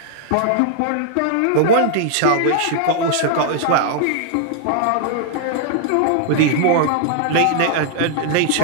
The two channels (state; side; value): different; both; correlation -0.01